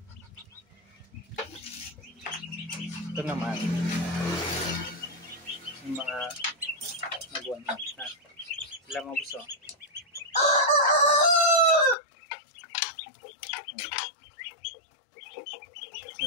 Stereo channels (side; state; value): right; drops out; at 12.0 s